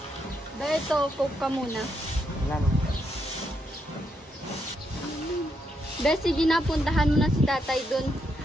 Beto, coke ka muna. Wala naman. Be, sige na, puntahan mo na si tatay dun.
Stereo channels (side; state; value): both; normal; correlation 0.79